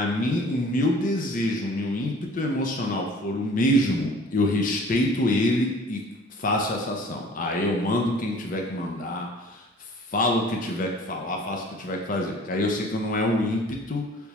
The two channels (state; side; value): normal; both; correlation 0.49